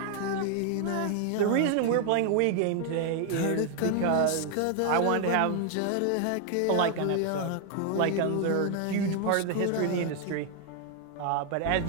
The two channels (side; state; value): both; different; correlation 0.00